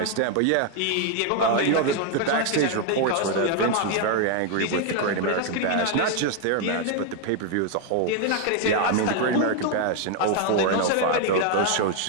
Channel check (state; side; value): different; both; correlation 0.00